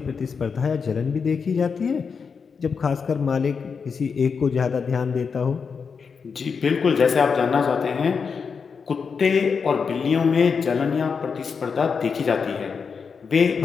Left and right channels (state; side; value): quieter; right; 5.7 dB